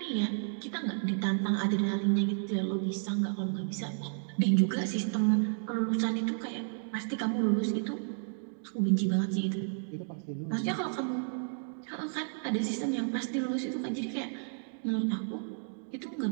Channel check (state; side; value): silent; left; digital silence